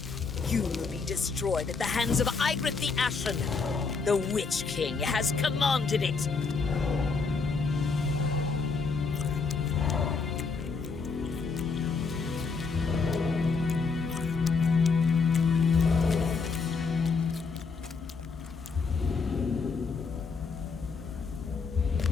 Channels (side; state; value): right; quieter; 4.7 dB